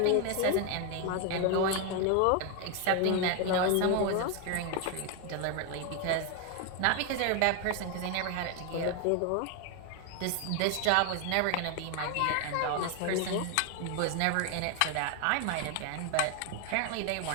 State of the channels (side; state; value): both; different; correlation 0.01